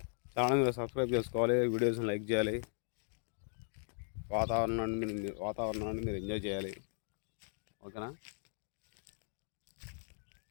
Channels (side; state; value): right; silent; 53 dB below the other